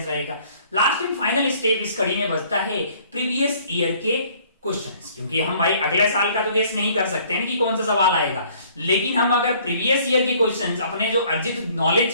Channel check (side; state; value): both; inverted; correlation -0.58